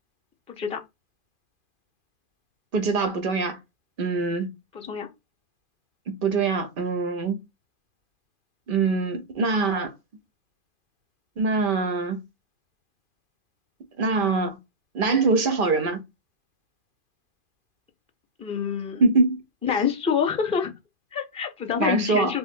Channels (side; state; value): left; late; 2.4 ms